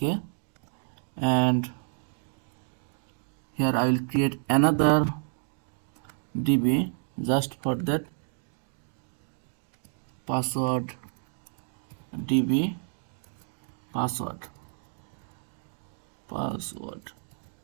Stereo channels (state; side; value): silent; left; digital silence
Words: and here I will create another DB just for that password DB password.